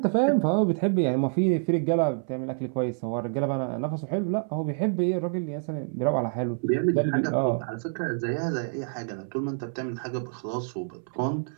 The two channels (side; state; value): left; silent; 60 dB below the other